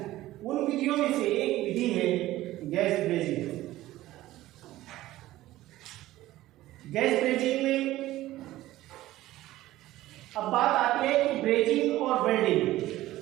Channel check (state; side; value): quieter; left; 15.9 dB